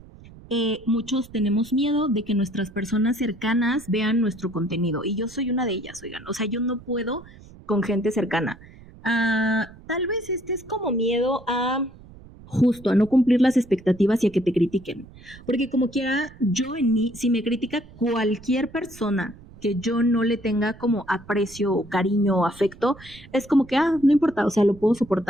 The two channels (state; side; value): noise; right; rumble, 21 dB below the sound